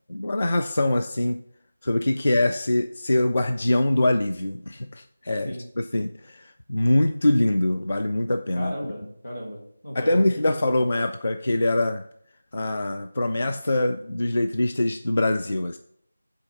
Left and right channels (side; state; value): both; inverted; correlation -0.96